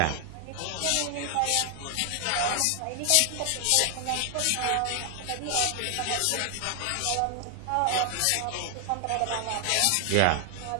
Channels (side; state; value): both; different; correlation 0.00